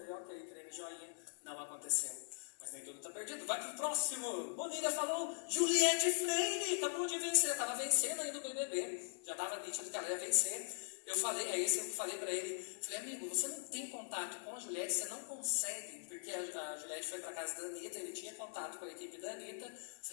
ok, treino joinha. Não aconteceu. Mas nem tudo tá perdido. Vai pro próximo. Bonilha falou, Juliette Freire acabou de vencer. Tava vencendo ainda o BBB. Já tava nítido que ela ia vencer. Eu falei, eu falei pra ele, falei, amigo, você não tem contato com a Juliette, você não consegue, porque a Juliette foi pra casa da Anitta, ele tinha contato com a equipe da Anitta. Eu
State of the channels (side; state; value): right; silent; digital silence